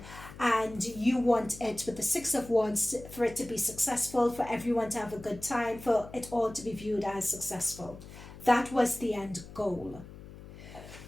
And you want it, with the Six of Wands, for it to be successful, for everyone to have a good time, for it all to be viewed as successful. That was the end goal.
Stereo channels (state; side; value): noise; left; hum, 16 dB below the sound